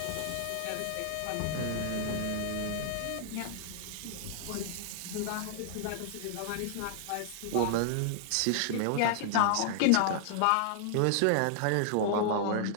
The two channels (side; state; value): both; different; correlation -0.01